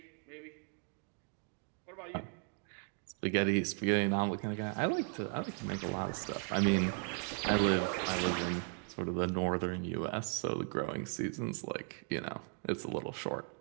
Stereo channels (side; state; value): left; quieter; 39.3 dB